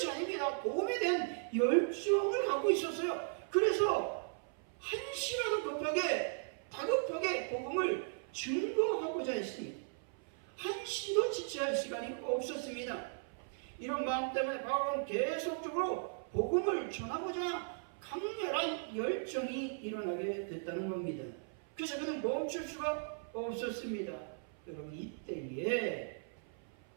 아닙니다. 복음에 대한 열정을 갖고 있었어요. 그래서 한시라도 다급하게 복음을 증거하고자 했습니다. 한시도 지체할 시간이 없었습니다. 이런 마음 때문에 바울은 계속적으로 복음을 전하고자 강렬한 열정이 일어나게 됐다는 겁니다. 그래서 그는 멈출 수가 없었습니다. 여러분 이때에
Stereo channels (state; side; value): silent; left; 53 dB below the other